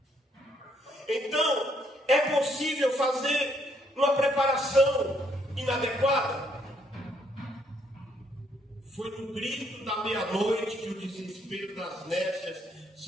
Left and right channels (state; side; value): normal; both; correlation 0.70